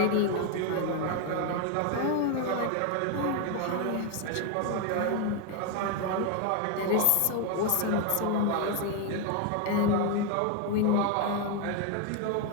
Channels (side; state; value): both; different; correlation 0.01